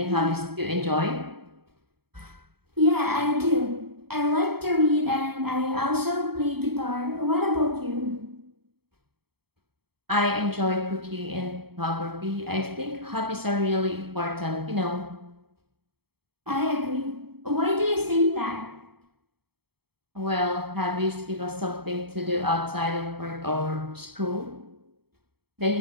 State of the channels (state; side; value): late; left; 0.96 ms